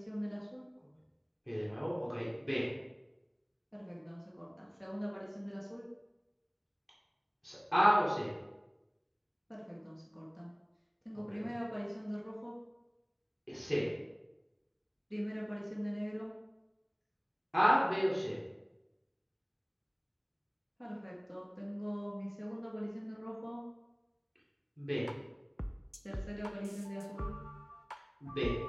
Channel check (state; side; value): identical; both; correlation 1.00